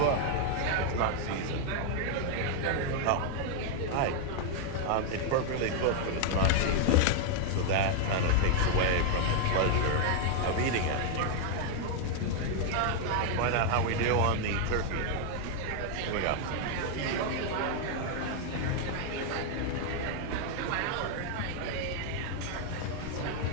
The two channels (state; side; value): different; both; correlation 0.00